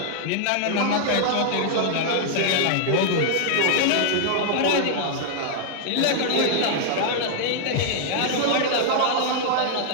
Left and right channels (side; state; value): both; different; correlation -0.01